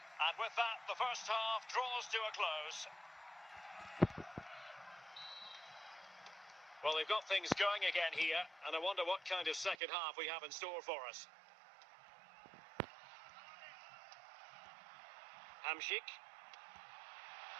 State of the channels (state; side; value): drops out; left; at 9.8 s